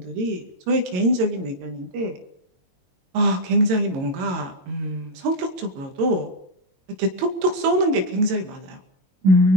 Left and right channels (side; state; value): left; late; 22 ms